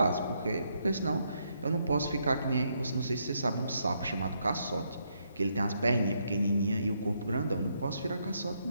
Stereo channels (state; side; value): inverted; both; correlation -0.76